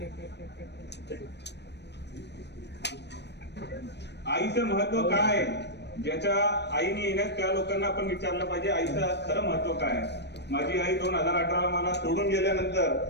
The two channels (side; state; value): right; late; 0.50 ms